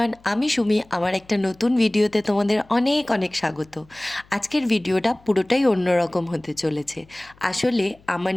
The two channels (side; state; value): left; noise; hum, 28 dB below the sound